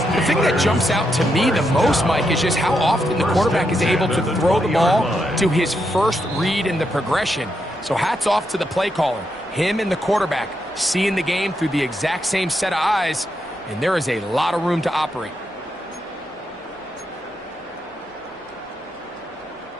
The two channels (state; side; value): normal; both; correlation 0.82